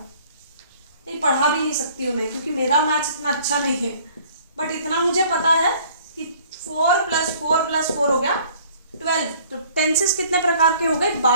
नहीं पढ़ा भी नहीं सकती हूँ मैं क्योंकि मेरा मैथ्स इतना अच्छा नहीं है, बट इतना मुझे पता है कि 4 + 4 + 4 हो गया 12। तो टेंसेस कितने प्रकार के हो गए,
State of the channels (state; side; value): inverted; both; correlation -0.55